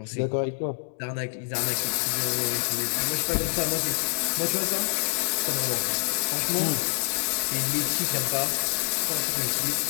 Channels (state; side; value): silent; right; digital silence